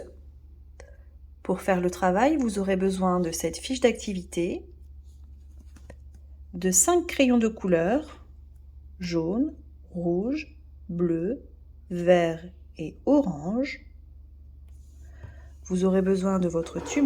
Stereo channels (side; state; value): both; identical; correlation 1.00